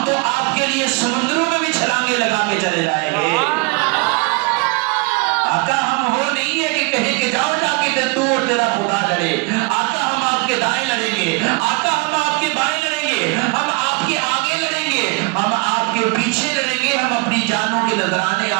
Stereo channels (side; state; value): left; quieter; 27.6 dB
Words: تو آپ کے لیے سمندروں میں بھی چھلانگے لگا کے چلے جائیں گے. آقا ہم وہ نہیں ہے کہ کہیں کہ جاؤ جا کے تو اور تیرا خدا لڑے. آقا ہم آپ کے دائیں لڑیں گے, آقا ہم آپ کے بائیں لڑیں گے, ہم آپ کے آگے لڑیں گے, ہم آپ کے پیچھے لڑیں گے, ہم اپنی جانوں کے نذرانے